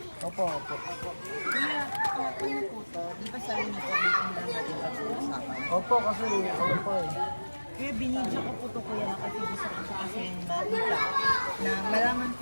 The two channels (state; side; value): inverted; both; correlation -1.00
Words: Opo, opo. Kuya, ano po to? Di ba sabi niyo po, waiting lang natin pag-uusapan? Opo, kasi ano po eh. Kaya binidyo ko po to kuya kasi gusto ko po kasi makita na malaman